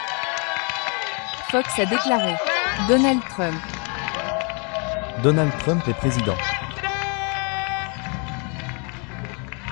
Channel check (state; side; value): quieter; right; 35.0 dB